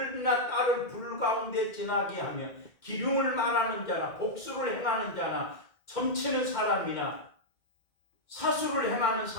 딸을 불 가운데 지나게 하며 기륭을 말하는 자나 복수를 행하는 자나 점치는 사람이나 사수를 행하는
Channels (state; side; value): late; right; 2.1 ms